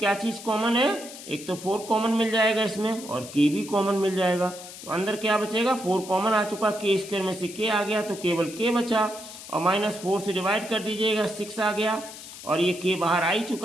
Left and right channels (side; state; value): left; noise; hiss, 14 dB below the sound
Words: चीज कॉमन है, एक तो 4 कॉमन मिल जाएगा इसमें और k भी कॉमन मिल जाएगा, तो अंदर क्या बचेगा, 4 कॉमन आ चुका, k स्क्वायर में से k आ गया तो केवल k बचा, और माइनस 4 से डिवाइड कर दीजिएगा 6 आ गया, और ये k बाहर आ ही